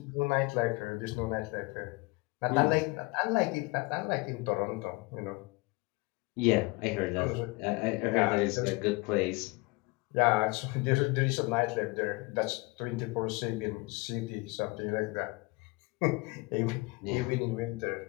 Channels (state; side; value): quieter; right; 25.1 dB